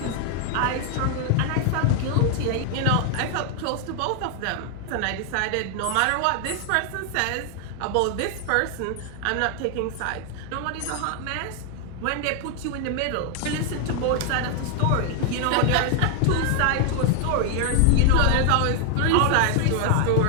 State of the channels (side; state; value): both; different; correlation 0.00